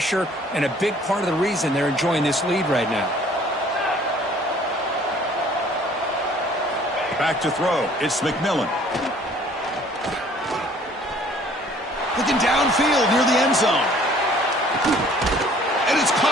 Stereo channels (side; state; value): both; normal; correlation 0.55